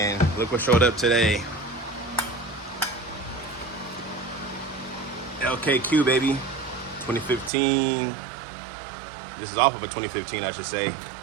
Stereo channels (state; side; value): drops out; left; at 7.5 s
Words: look what showed up today. LKQ, baby, 2015. This is off of a 2015, I should say.